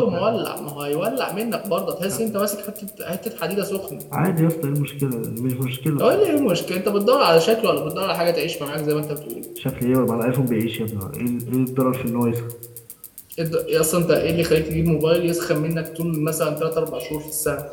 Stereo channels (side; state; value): both; identical; correlation 1.00